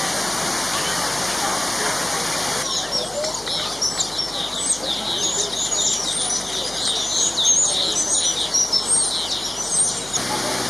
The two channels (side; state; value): left; noise; hum, 21 dB below the sound